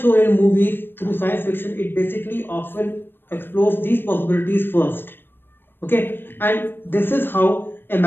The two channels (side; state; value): right; late; 0.098 ms